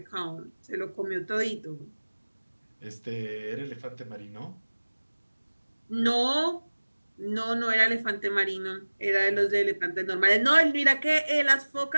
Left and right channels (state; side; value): inverted; both; correlation -1.00